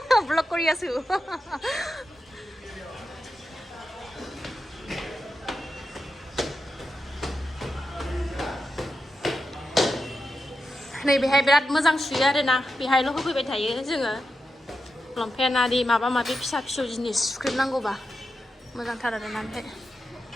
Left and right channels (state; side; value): normal; both; correlation 0.88